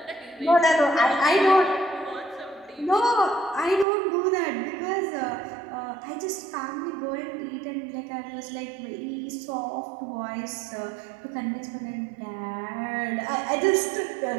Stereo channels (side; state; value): left; drops out; at 3.9 s